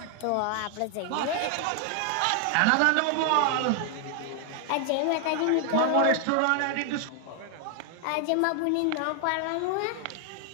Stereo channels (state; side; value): different; both; correlation 0.00